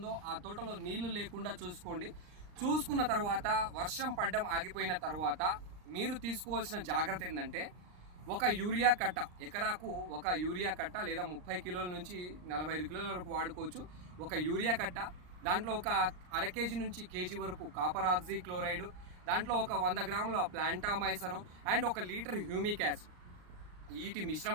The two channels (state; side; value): late; left; 39 ms